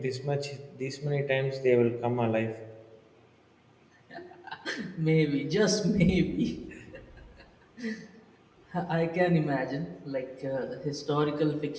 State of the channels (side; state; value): both; identical; correlation 1.00